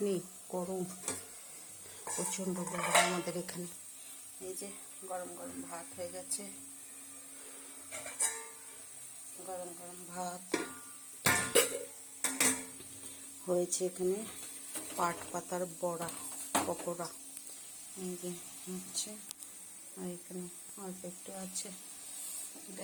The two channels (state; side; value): identical; both; correlation 1.00